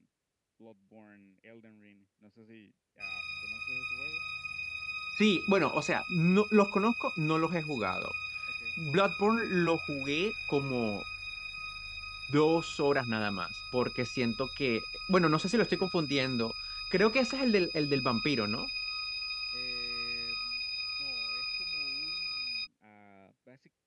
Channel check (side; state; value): both; identical; correlation 1.00